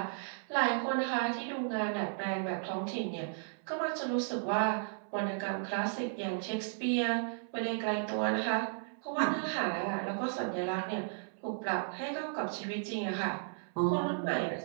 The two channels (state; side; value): silent; left; 55 dB below the other